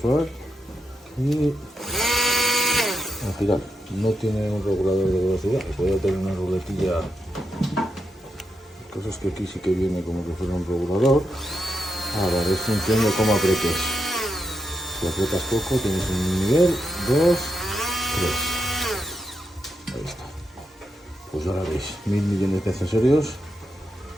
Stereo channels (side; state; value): both; normal; correlation 0.84